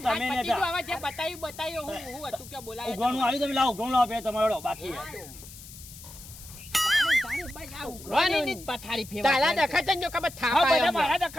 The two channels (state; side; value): noise; left; hiss, 16 dB below the sound